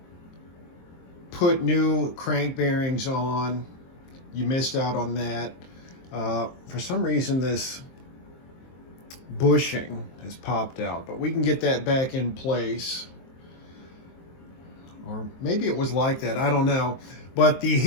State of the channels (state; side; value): late; right; 23 ms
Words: put new crank bearings on. You missed out on that. For some reason, this bushing has popped out, but we can get that back in place. Or maybe it was like that, I don't know. But the